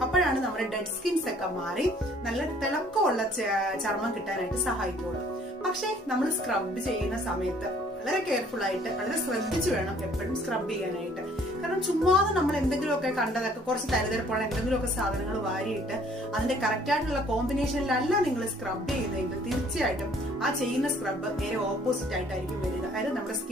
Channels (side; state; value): both; normal; correlation 0.58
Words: അപ്പോഴാണ് നമ്മുടെ ഡെഡ് സ്കിൻസ് ഒക്കെ മാറി നല്ല തിളക്കമുള്ള ചർമ്മം കിട്ടാനായിട്ട് സഹായിക്കുള്ളൂ. പക്ഷെ നമ്മൾ സ്ക്രബ് ചെയ്യുന്ന സമയത്ത് വളരെ കെയർഫുൾ ആയിട്ട് വളരെ ശ്രദ്ധിച്ചു വേണം എപ്പോഴും സ്ക്രബ് ചെയ്യാനായിട്ട്. കാരണം ചുമ്മാതെ നമ്മൾ എന്തെങ്കിലുമൊക്കെ കണ്ടതൊക്കെ കുറച്ച് തരതരപ്പുള്ള എന്തെങ്കിലുമൊക്കെ സാധനങ്ങൾ വാരിയിട്ട് അതിന്റെ കറക്റ്റ് ആയിട്ടുള്ള കോമ്പിനേഷനിലല്ല നിങ്ങൾ സ്ക്രബ് ചെയ്യുന്നതെങ്കിൽ തീർച്ചയായിട്ടും ആ ചെയ്യുന്ന സ്ക്രബ് നേരെ ഓപ്പോസിറ്റ് ആയിട്ടായിരിക്കും വരിക. അതായത് നമ്മുടെ